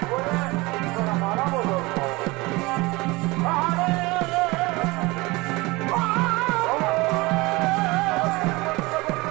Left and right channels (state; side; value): quieter; left; 23.0 dB